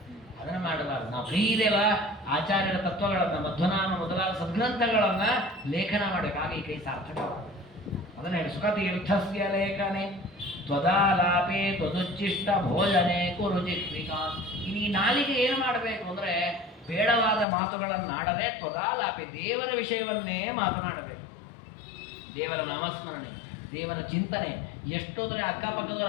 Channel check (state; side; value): drops out; right; at 17.4 s